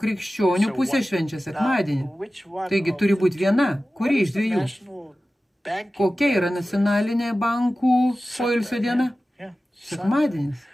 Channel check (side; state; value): both; normal; correlation 0.95